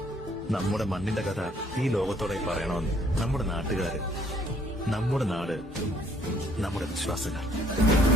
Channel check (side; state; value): both; normal; correlation 0.64